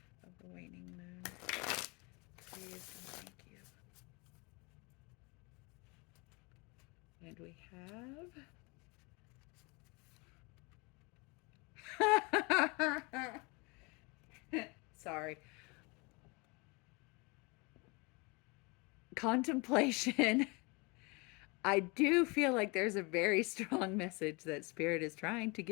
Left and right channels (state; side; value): quieter; right; 28.6 dB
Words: of the waning moon. Please and thank you. And we have... Sorry. Contemplation. I do feel like there's a very strong message that Spirit is trying to